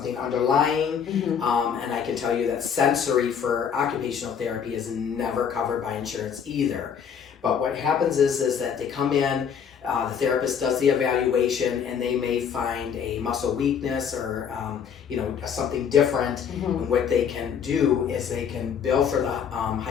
underlying, and I can tell you that sensory for occupational therapy is never covered by insurance either. But what happens is that they come in, the therapist does the evaluation, and they may find a muscle weakness or you know, something different. And what they can do is they can bill for the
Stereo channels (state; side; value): quieter; right; 7.4 dB